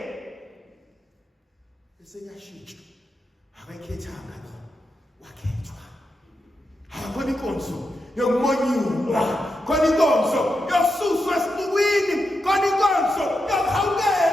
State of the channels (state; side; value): normal; both; correlation 0.87